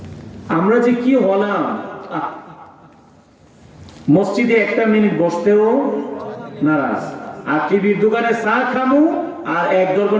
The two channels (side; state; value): both; identical; correlation 1.00